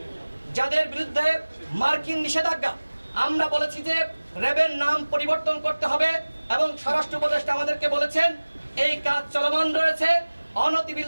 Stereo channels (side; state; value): both; inverted; correlation -1.00